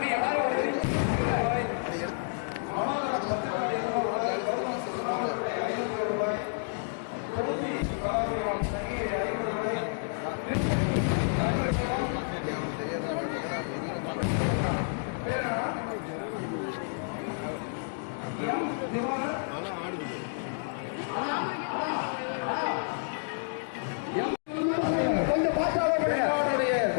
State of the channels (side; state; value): right; silent; digital silence